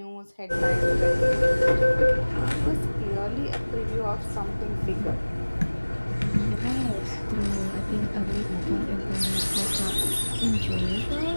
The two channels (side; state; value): both; inverted; correlation -1.00